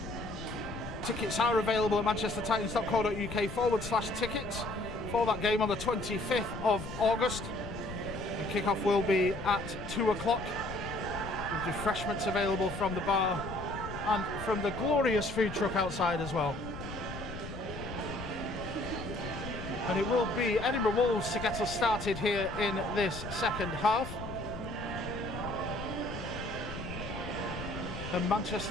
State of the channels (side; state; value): left; noise; rumble, 10 dB below the sound